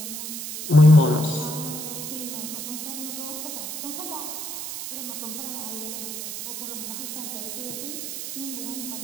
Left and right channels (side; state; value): right; noise; hiss, 6 dB below the sound